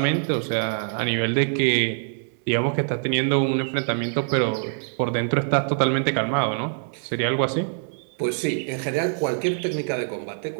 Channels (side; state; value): left; silent; digital silence